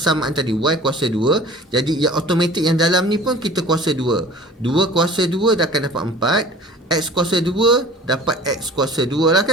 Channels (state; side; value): normal; both; correlation 0.44